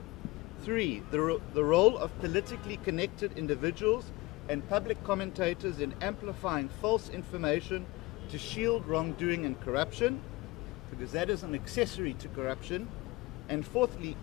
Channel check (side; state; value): right; quieter; 21.7 dB